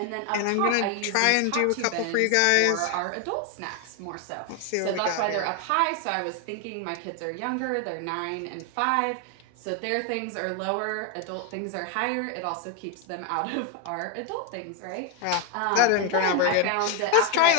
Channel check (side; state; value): both; different; correlation 0.01